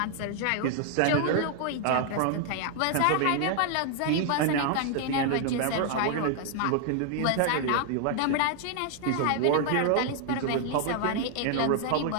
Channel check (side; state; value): both; different; correlation 0.00